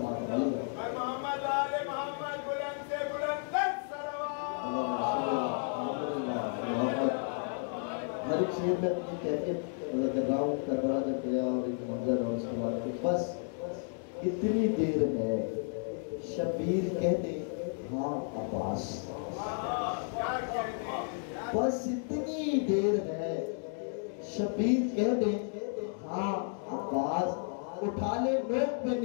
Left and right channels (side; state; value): right; silent; 56 dB below the other